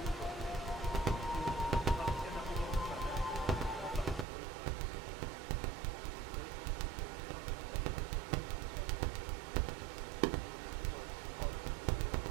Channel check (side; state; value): left; drops out; at 4.2 s